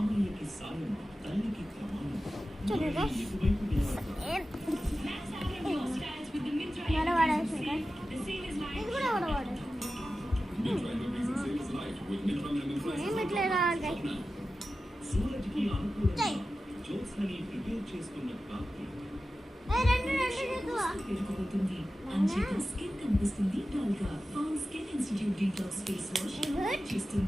చూడండి వడవాడేసి ఇది కూడా వడవాడేసి ఏం ఇట్లా రావాలి. చేయి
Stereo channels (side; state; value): both; normal; correlation 0.94